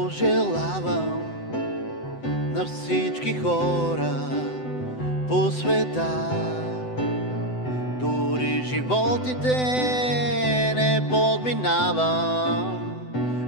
на всички хора по света. Дори животите не подминавам,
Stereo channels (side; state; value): right; late; 7.9 ms